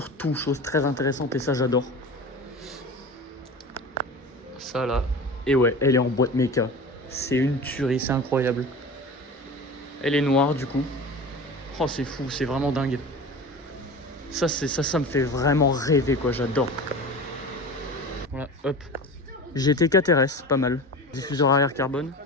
chose très intéressante, et ça j'adore. Ça là, et ouais, elle est en boîte méca. C'est une tuerie, c'est incroyable. Elle est noire du coup. Oh c'est fou, c'est vraiment dingue. Ça me fait vraiment rêver quoi, j'adore. Voilà, hop. GT4 RS, pas mal. Diffuseur arrière carbone.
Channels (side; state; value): both; normal; correlation 0.33